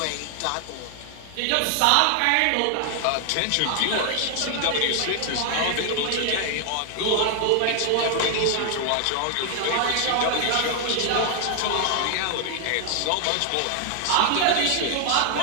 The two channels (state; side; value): different; both; correlation 0.00